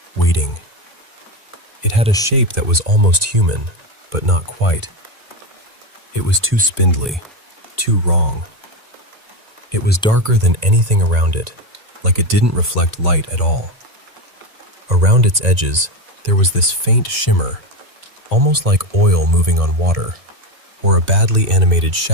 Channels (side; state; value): left; late; 1.9 ms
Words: waiting. It had a shape that was almost human, but not quite. It was too spindly, too wrong. It was darker than anything around it, like it didn't reflect light at all. Around its edges, there was this faint shimmer, almost like oil moving on water, or a badly animated